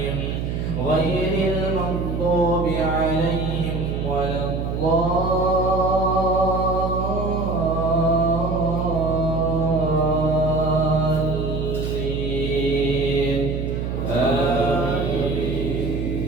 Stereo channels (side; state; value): right; noise; hum, 3 dB below the sound